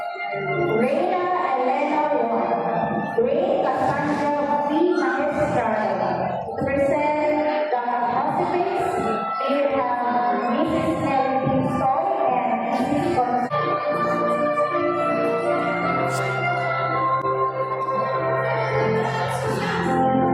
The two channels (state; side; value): identical; both; correlation 1.00